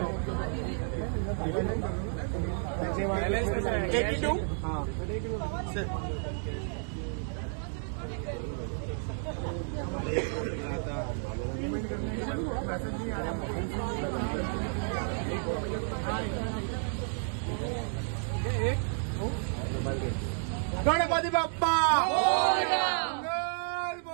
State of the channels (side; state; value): left; silent; 57 dB below the other